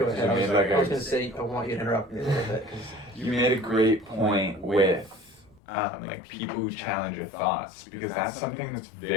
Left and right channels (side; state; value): right; drops out; at 5.6 s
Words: ahead. I was gonna say I want you to interrupt me a little bit. You made a great point with like people who challenge your thoughts, because that's something that's